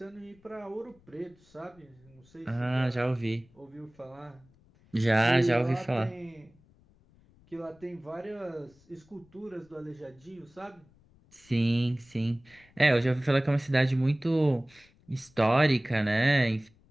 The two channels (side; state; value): left; noise; rumble, 30 dB below the sound